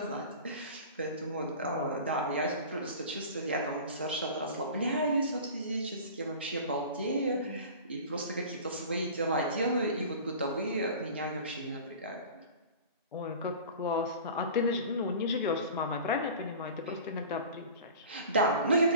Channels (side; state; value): both; inverted; correlation -0.39